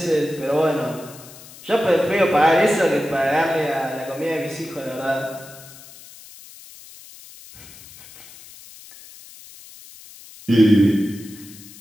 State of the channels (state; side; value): noise; left; hiss, 19 dB below the sound